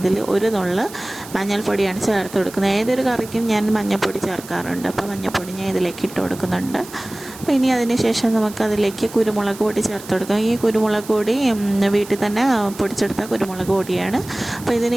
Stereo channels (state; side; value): noise; right; hiss, 17 dB below the sound